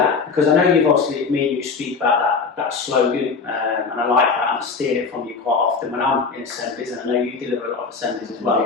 because I know you've obviously, me and you speak about that slogan, and I like that, and I steal it from you quite often when I'm in assemblies, and I know you deliver a lot of assemblies as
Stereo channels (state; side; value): quieter; right; 4.9 dB